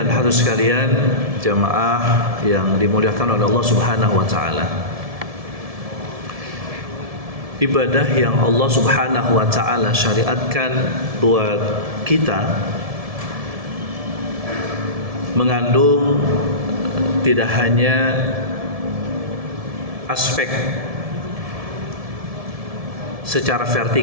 hadirat sekalian, jamaah yang dimuliakan oleh Allah Subhanahu wa taala. Ibadah yang Allah Subhanahu wa taala syariatkan buat kita mengandung tidak hanya aspek secara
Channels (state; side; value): late; left; 1.7 ms